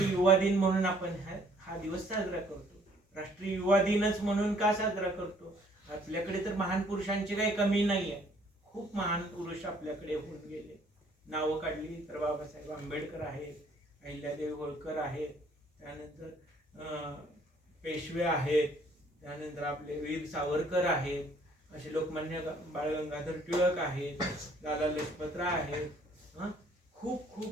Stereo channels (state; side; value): normal; both; correlation 0.61